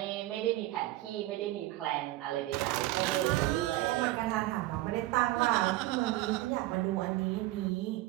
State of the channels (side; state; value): left; quieter; 17.2 dB